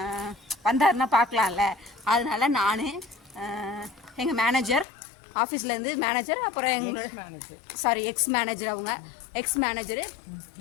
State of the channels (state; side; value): drops out; right; at 4.9 s